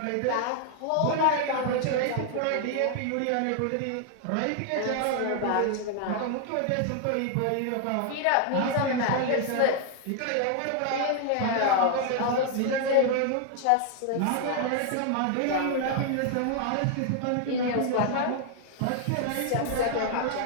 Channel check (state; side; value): different; both; correlation 0.00